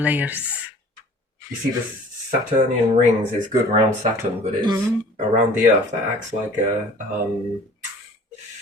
layers. You see, the Saturnian rings is good around Saturn, but it's around the Earth that acts like a.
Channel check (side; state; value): both; normal; correlation 0.48